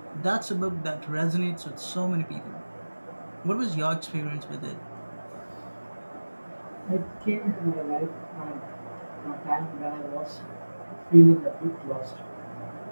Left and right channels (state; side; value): inverted; both; correlation -1.00